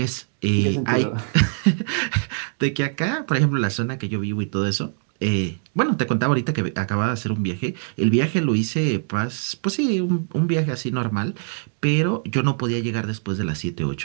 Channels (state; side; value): silent; left; digital silence